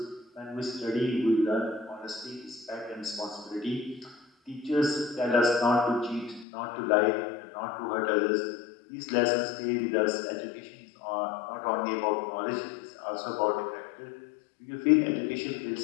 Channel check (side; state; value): right; drops out; at 6.5 s